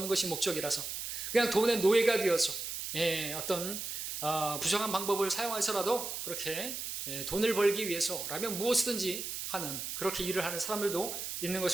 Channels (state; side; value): noise; right; hiss, 5 dB below the sound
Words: 것이 목적이라서 그냥 돈의 노예가 되어서 어떤 부정한 방법을 사용해서라도 그렇게 돈을 벌기 위해서라면 무엇이든지 하는 그렇게 일을 하는 사람들도 있는